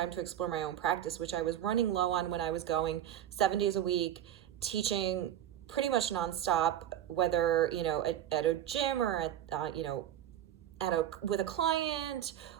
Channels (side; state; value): left; quieter; 11.3 dB